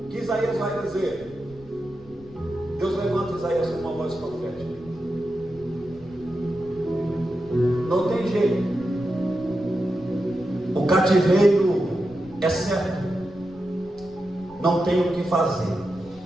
que Isaías vai dizer. Deus levanta Isaías com uma voz profética. Não tem jeito. O cativeiro é certo. Não tem o que fazer.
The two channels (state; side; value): noise; left; rumble, 23 dB below the sound